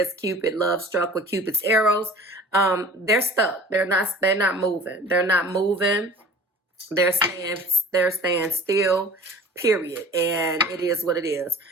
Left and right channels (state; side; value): normal; both; correlation 0.43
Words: Cupid, love struck with Cupid's arrows. They're stuck. They're not moving. They're not moving. They're staying still. Period. And it is what it is.